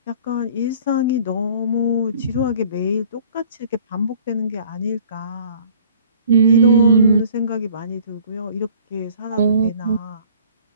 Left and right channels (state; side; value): inverted; both; correlation -0.52